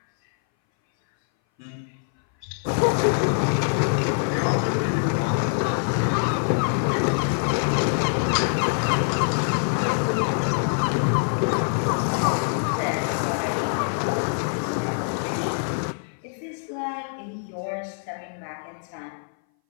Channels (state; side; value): silent; right; 59 dB below the other